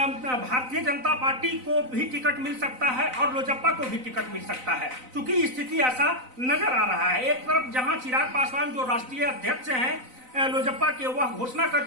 जनता पार्टी को भी टिकट मिल सकता है और लोजप्पा को भी टिकट मिल सकता है, क्योंकि स्थिति ऐसा नजर आ रहा है। एक तरफ जहां चिराग पासवान जो राष्ट्रीय अध्यक्ष हैं लोजप्पा के, वह घोषणा कर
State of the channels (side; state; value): left; late; 3.9 ms